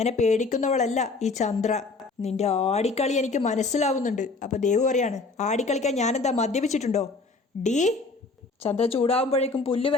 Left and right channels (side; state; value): right; quieter; 3.8 dB